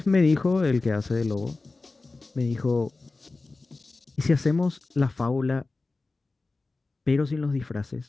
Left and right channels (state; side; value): quieter; right; 3.5 dB